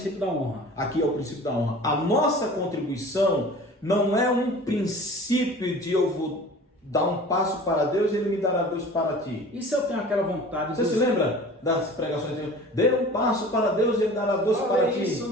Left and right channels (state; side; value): normal; both; correlation 0.42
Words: da honra. Aqui é o princípio da honra. A nossa contribuição não é um princípio de eu vou dar um passo para Deus e Ele me dará Deus para ti. E se eu tenho aquela vontade... Você se lembra das pregações de Deus? Dê um passo para Deus e Ele dará Deus para ti.